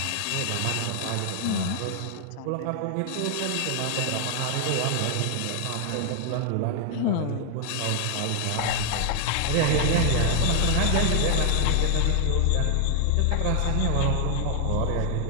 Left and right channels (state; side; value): different; both; correlation 0.00